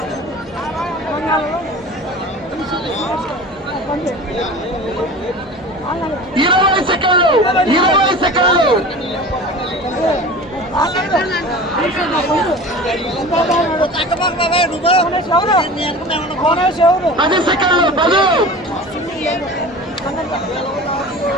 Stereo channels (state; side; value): normal; both; correlation 0.37